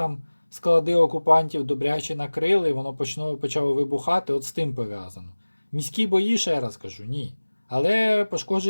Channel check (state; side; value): inverted; both; correlation -1.00